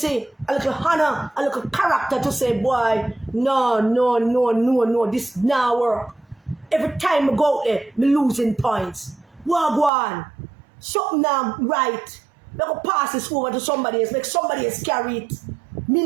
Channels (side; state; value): left; drops out; at 9.9 s